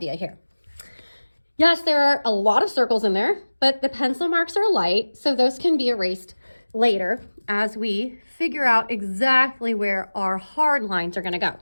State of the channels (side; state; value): both; inverted; correlation -1.00